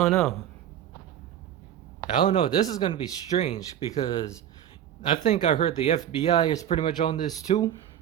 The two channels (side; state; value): left; quieter; 10.4 dB